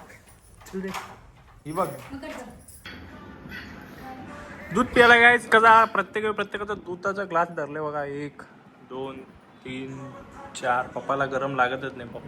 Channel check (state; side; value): identical; both; correlation 1.00